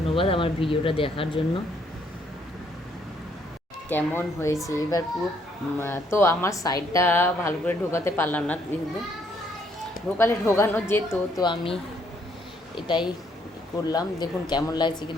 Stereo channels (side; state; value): both; normal; correlation 0.69